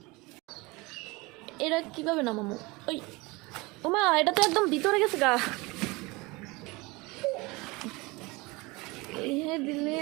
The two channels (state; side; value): quieter; left; 24.1 dB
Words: এটা কিভাবে নামাবো? ওই ওমা, এটা তো একদম ভিতরে গেছে গা। দিলে